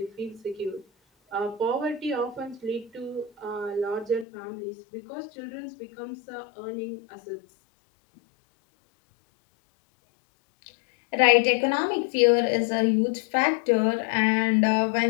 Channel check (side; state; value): right; drops out; at 4.2 s